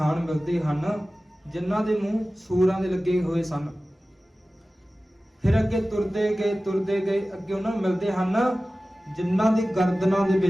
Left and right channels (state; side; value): normal; both; correlation 0.96